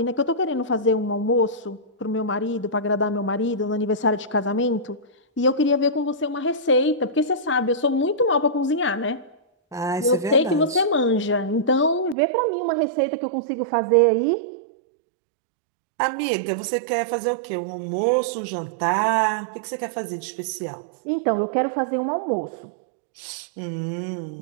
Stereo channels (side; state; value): left; drops out; at 12.2 s